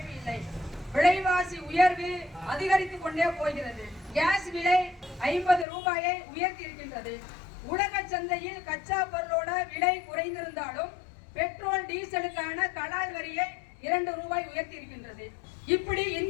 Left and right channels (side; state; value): right; drops out; at 5.7 s